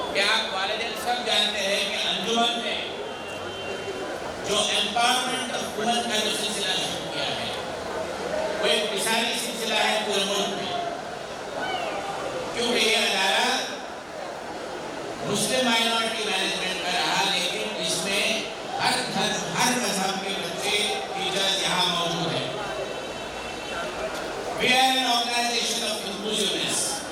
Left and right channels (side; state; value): both; identical; correlation 1.00